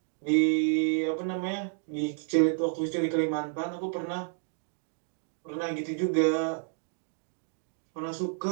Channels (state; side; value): silent; left; 58 dB below the other